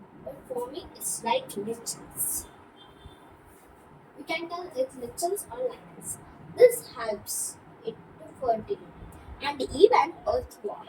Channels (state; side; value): identical; both; correlation 1.00